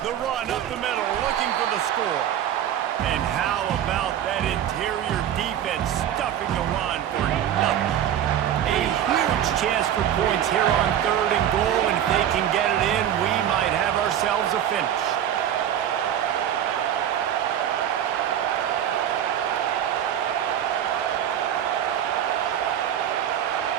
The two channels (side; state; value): left; quieter; 10.4 dB